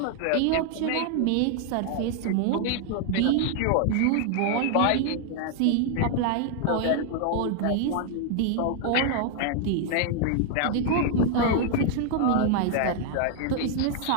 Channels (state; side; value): different; both; correlation 0.00